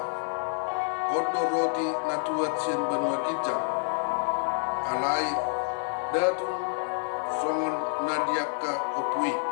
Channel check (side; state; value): right; silent; digital silence